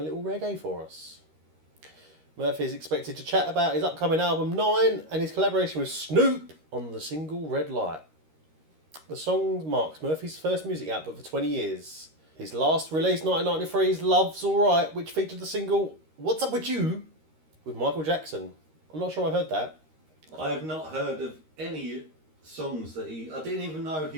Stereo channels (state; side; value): late; left; 13 ms